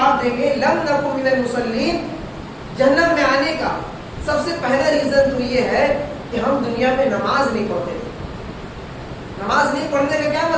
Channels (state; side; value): identical; both; correlation 1.00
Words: دیں گے لم نکو من المصلین، جہنم میں آنے کا سب سے پہلا ریزن تو یہ ہے کہ ہم دنیا میں نماز نہیں پڑھتے تھے۔ نماز نہیں پڑھنے کا کیا